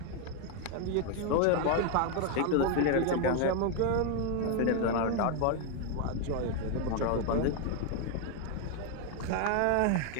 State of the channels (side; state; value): both; different; correlation 0.00